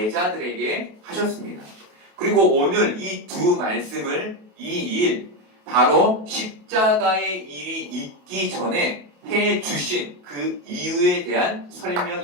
하셨습니다. 그리고 오늘 이 두 말씀을 이 일, 바로 십자가의 일이 있기 전에 해 주신 그 이유에 대한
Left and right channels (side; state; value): left; late; 28 ms